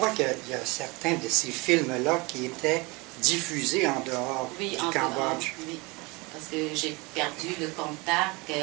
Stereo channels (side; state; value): left; quieter; 26.0 dB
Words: qu'il y a certains de ces films-là qui étaient diffusés en dehors du Cambodge. Oui, parce que j'ai perdu le contact